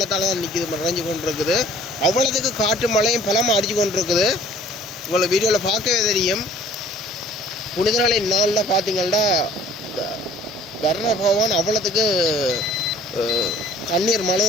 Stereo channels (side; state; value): both; normal; correlation 0.51